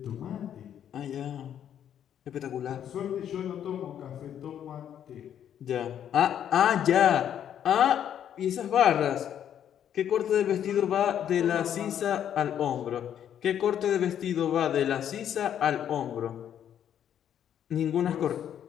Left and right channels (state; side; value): quieter; right; 9.7 dB